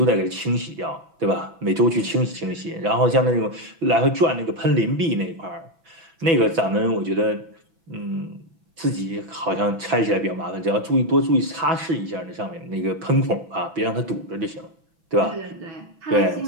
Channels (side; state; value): left; late; 6.0 ms